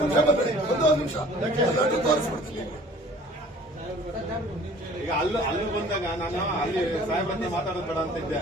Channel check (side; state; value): both; normal; correlation 0.50